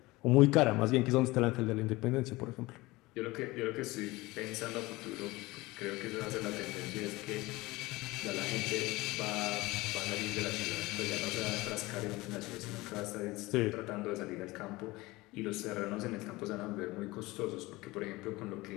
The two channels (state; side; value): quieter; right; 20.9 dB